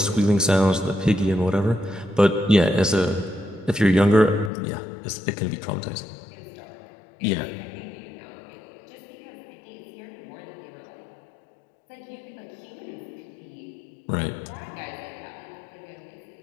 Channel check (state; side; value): drops out; right; at 4.5 s